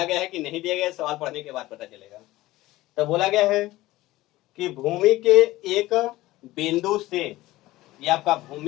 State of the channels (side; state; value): right; quieter; 17.5 dB